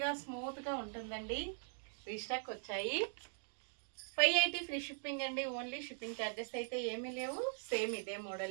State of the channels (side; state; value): left; silent; digital silence